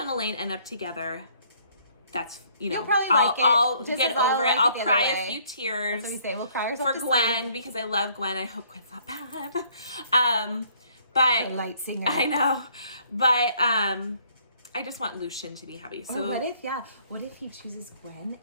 Elaine end up together, that's, you know, I'll get over it. I'll cry a few tears. That's what we say. We'll cry for Gwen because I love Gwen. I hope Gwen's not bad. But a light singer. I know. But I just want Lucian to be happy. So what if he chooses Gwen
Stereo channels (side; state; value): both; inverted; correlation -0.62